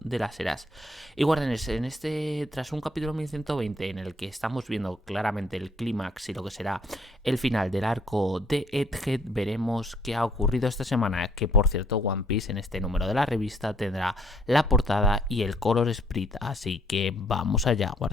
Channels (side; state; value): both; normal; correlation 0.64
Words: de las eras. Y guardianes, tras un capítulo 1120 en el que estamos viendo claramente el clímax y lo que será el final del arco de Egghead, veremos qué ha ocurrido esta semana, que por cierto One Piece en este número de la revista tendrá la portada y el color sprite, así que vamos allá,